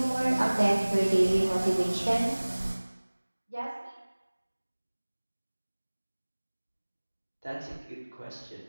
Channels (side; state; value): both; inverted; correlation -1.00